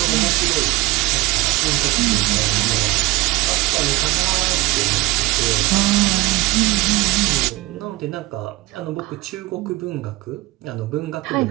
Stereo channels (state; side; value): quieter; left; 20.6 dB